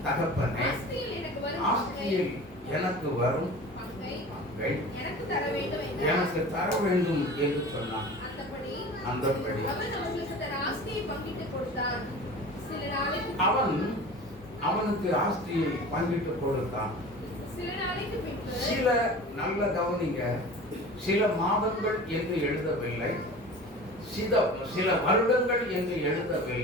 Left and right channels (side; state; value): both; normal; correlation 0.38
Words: தகப்பனே, ஆஸ்தியில் எனக்கு வரும் எனக்கு தர வேண்டும் என்று சொன்னான். அந்தபடி அவன் அவனுக்கு ஆஸ்தியை பங்கிட்டு கொடுத்தான். சில நல்ல கவனிங்க, சில மாதங்கள் என்று எழுதவில்லை, சில வருடங்கள் என்று